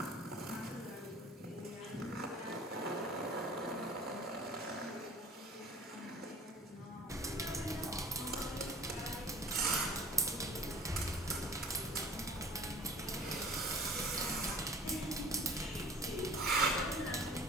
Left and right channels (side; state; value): both; normal; correlation 0.47